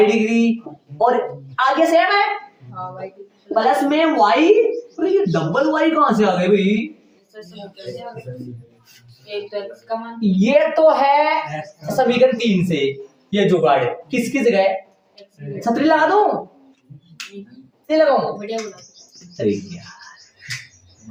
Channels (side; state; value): both; identical; correlation 1.00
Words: डिग्री, और आगे सेम है प्लस में वाई। ये डबल वाई कहां से आ गए भाई? ये तो है समीकरण 3 से। ये जुगाड़ किसकी जगह? छतरी लगा दो, नहीं लगाऊं? अरे